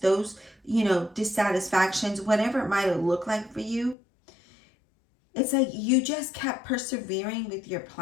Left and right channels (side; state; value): right; drops out; at 4.0 s